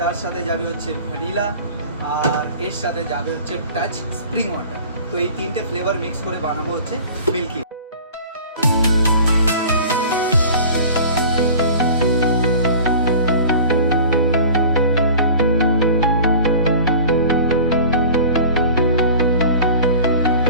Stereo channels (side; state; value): both; inverted; correlation -0.42